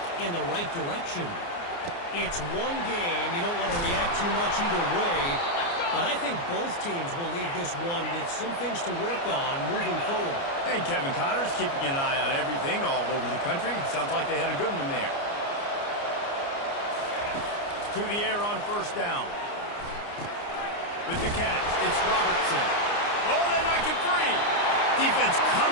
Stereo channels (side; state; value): right; late; 29 ms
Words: in the right direction. It's one game. You don't want to react too much either way. But I think both teams will leave this one with some things to work on moving forward. And Kevin Connors keeping an eye on everything all over the country. Sounds like they had a good one there. To the air on first down. With the catch, it's Robertson. Oh, they knock it free. Defense